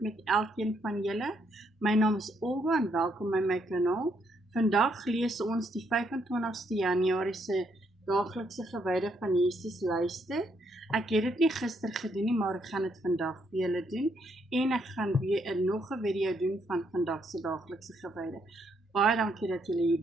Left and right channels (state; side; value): normal; both; correlation 0.74